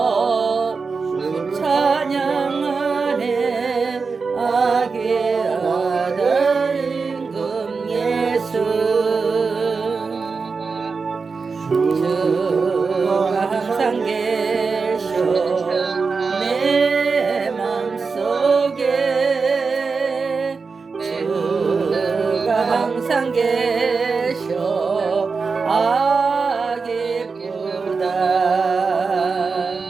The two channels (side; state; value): left; quieter; 4.7 dB